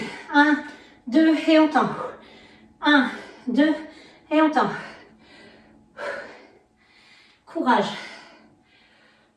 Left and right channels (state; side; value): identical; both; correlation 1.00